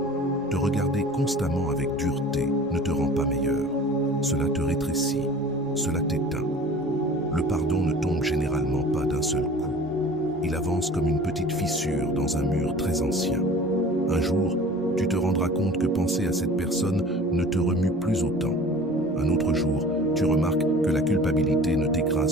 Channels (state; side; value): normal; both; correlation 0.43